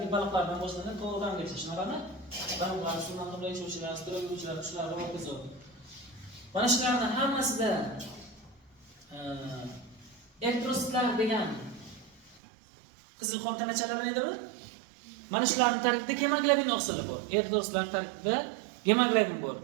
baliqlardan boshlanib to'g'ridangacha, shunaqami? Baliqlar, suvdan qimray yashovchilar, sudrab yuruvchilar, shular va hokazo. Mana shularning hammasida elektrositlar degan qizil qon tanachalarni aytadi. Mana shularning tarkibida gemoglobin oqsili bor. Elektrositlar tarkibida gemoglobin bor.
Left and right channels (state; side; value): drops out; left; at 12.4 s